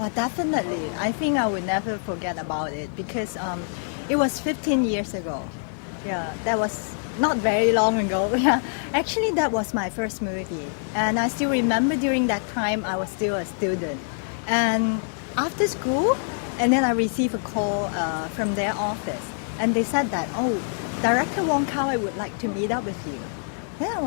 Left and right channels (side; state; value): right; silent; 62 dB below the other